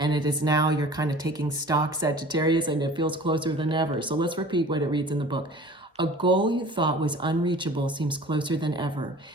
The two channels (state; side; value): normal; both; correlation 0.44